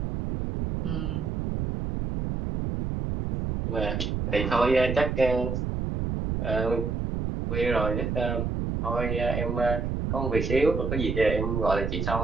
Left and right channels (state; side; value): noise; right; rumble, 2 dB below the sound